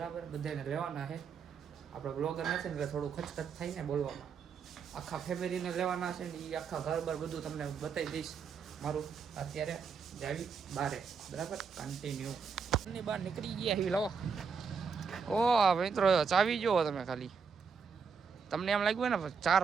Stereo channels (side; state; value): left; quieter; 5.8 dB